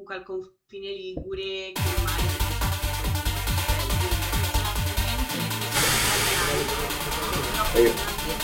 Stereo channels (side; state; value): both; identical; correlation 1.00